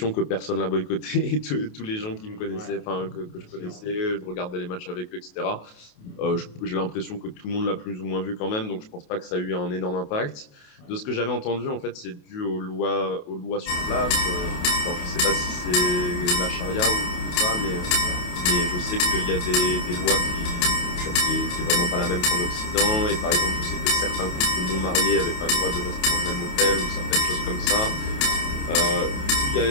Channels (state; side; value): late; right; 28 ms